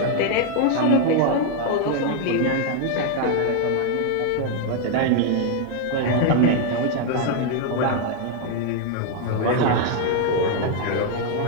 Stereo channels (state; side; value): different; both; correlation 0.00